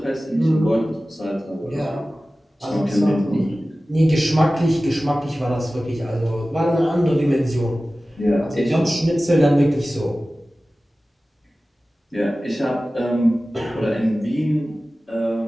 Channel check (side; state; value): both; normal; correlation 0.96